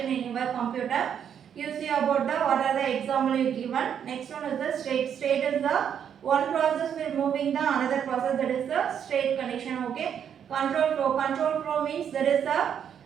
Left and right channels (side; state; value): left; quieter; 8.5 dB